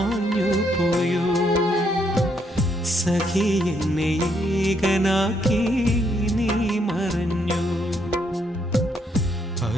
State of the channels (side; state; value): both; normal; correlation 0.73